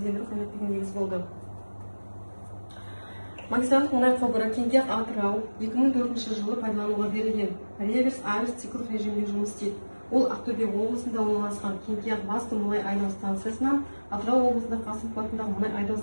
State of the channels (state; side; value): inverted; both; correlation -1.00